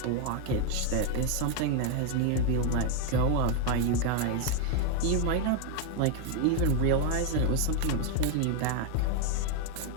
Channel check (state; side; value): different; both; correlation 0.01